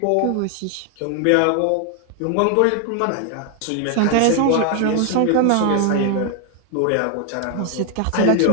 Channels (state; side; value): different; both; correlation 0.00